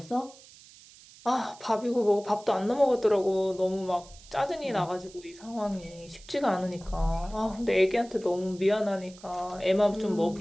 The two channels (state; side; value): noise; right; hiss, 22 dB below the sound